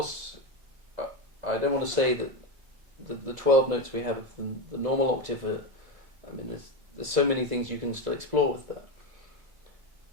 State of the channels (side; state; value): left; late; 2.0 ms